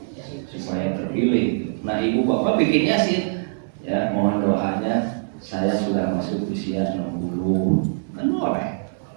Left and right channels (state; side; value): silent; left; digital silence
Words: supaya terpilih. Nah, ibu bapak bikin Yasin. Ya, mohon doanya saya sudah masuk usia 60. Kan boleh.